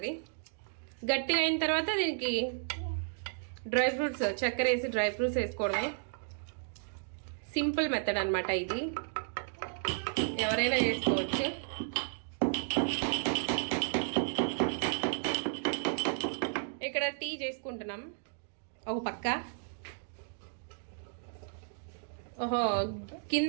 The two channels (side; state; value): left; silent; digital silence